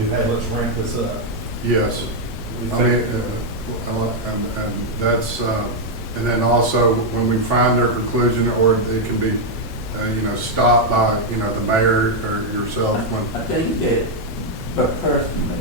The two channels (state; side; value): normal; both; correlation 0.00